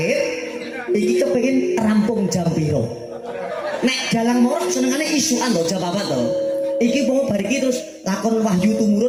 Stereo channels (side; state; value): both; identical; correlation 1.00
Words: Iki kepengin rampung jam piro? Nek dalang morok senengane isukan lho jam apa to? Iki mau bar iki terus lakon Wahyu